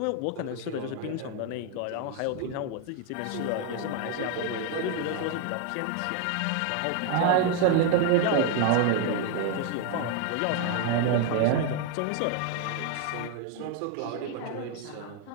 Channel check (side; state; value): both; different; correlation 0.00